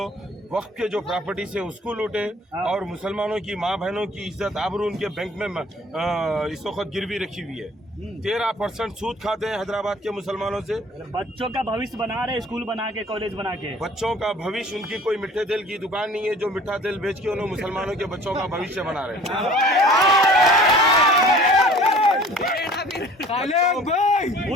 वक्त के जो प्रॉपर्टीज है उसको लूटे, और मुसलमानों की माँ बहनों की इज्जत आबरू उनके बैंक में इस वक्त गिरवी रखी हुई है। 13% सूद खाते हैं हैदराबाद के मुसलमानों से। बच्चों का भविष्य बना रहे, स्कूल बना के, कॉलेज बना के। बच्चों का भविष्य, उनकी कोई मिठे तेल की दुकान नहीं है जो मिठा तेल बेच के उन्होंने मुसलमानों के बच्चों का भविष्य बना रहे हैं।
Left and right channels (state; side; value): normal; both; correlation 0.48